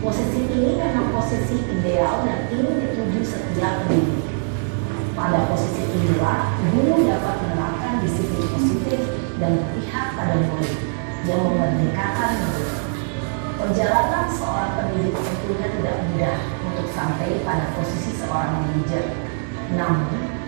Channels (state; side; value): silent; left; 60 dB below the other